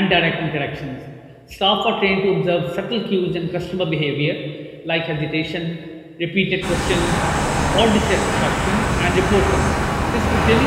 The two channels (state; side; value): identical; both; correlation 1.00